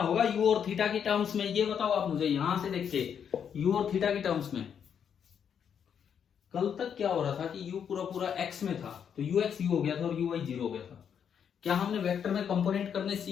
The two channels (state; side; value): quieter; right; 7.9 dB